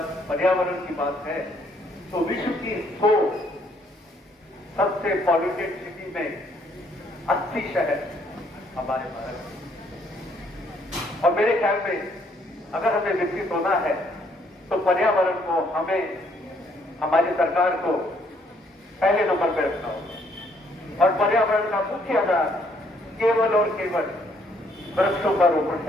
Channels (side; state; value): both; normal; correlation 0.67